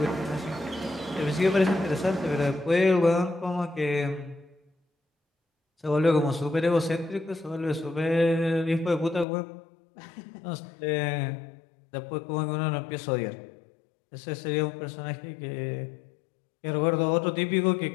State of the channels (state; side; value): drops out; right; at 9.2 s